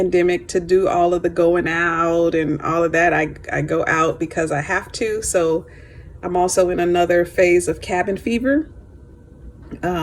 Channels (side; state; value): both; identical; correlation 1.00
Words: to do all of the going out and all of that. I go out because I have to. So I'm also in another phase of cabin fever.